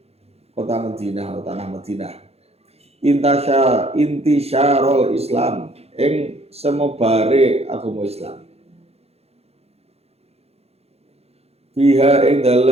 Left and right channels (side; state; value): left; late; 0.30 ms